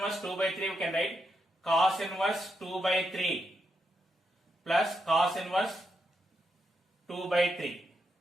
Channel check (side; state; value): both; normal; correlation 0.83